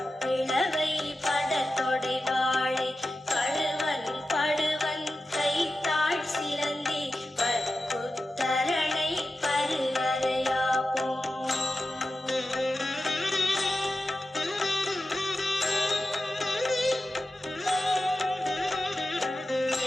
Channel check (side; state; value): both; normal; correlation 0.92